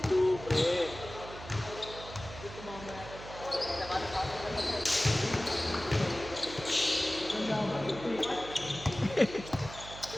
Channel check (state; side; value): noise; right; hum, 13 dB below the sound